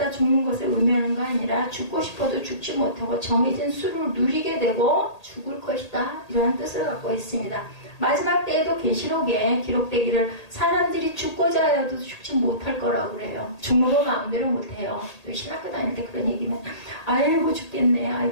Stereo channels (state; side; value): late; right; 1.8 ms